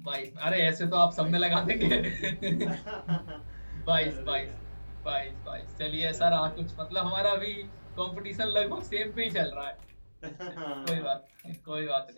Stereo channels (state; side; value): inverted; both; correlation -1.00